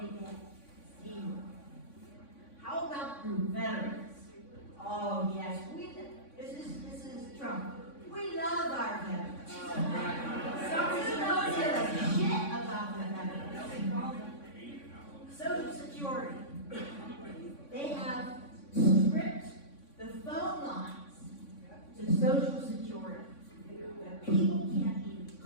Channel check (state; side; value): late; right; 3.6 ms